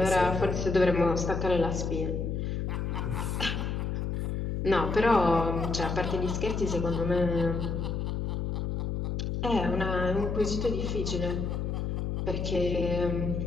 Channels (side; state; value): left; noise; hum, 1 dB below the sound